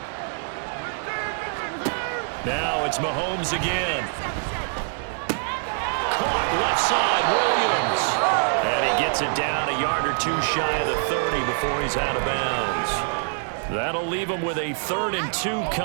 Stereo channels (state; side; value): silent; left; 62 dB below the other